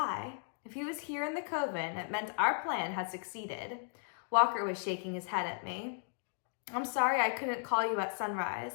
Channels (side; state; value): right; silent; digital silence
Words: If he was here in the coven, it meant our plan had succeeded. Walker was shaking his head at me. I'm sorry I couldn't call you at sunrise.